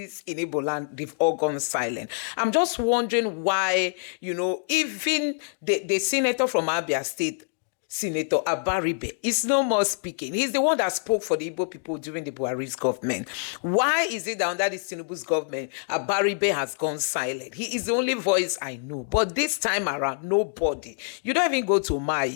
in Igbo land, they've all gone silent. I'm just wondering why, even the senator from Abia State, Senator Abaribe is no more speaking. He's the one that spoke for the Igbo people during the Buhari's government. Why is it that under this Tinubu's government, Abaribe has gone silent? He is the only voice I know. But this time around, nobody. You don't even go to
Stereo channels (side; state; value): right; silent; digital silence